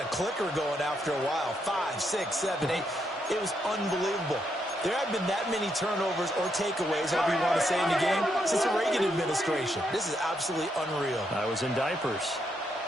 clicker going after a while. 5, 6, 7, 8. It was unbelievable. There have been that many turnovers or takeaways, however you want to say, in the game since the Reagan administration. This is absolutely unreal. I was in diapers.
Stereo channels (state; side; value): normal; both; correlation 0.79